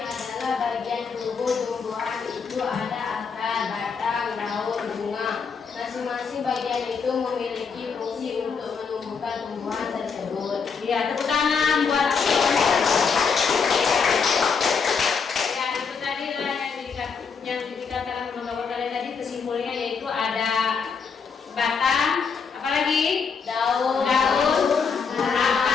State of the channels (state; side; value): quieter; right; 5.7 dB